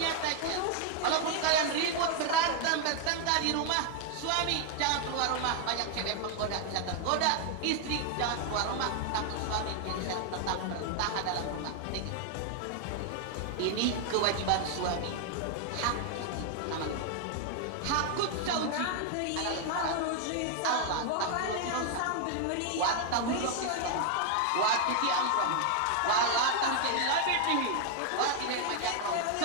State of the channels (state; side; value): different; both; correlation 0.00